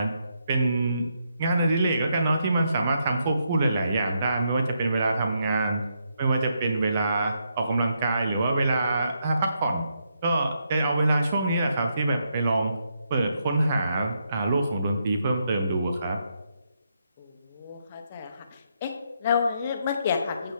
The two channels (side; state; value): both; inverted; correlation -0.79